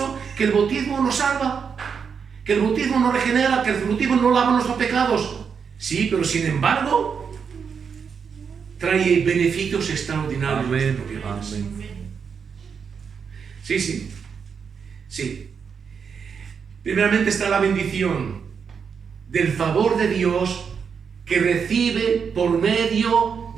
que el bautismo nos salva, que el bautismo nos regenera, que el bautismo no lava nuestros pecados. Sí, pero sin embargo, trae beneficios extraordinarios. Amén, amén. Sí, sí, sí. Primeramente está la bendición del favor de Dios que recibe por medio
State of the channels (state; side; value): quieter; left; 6.4 dB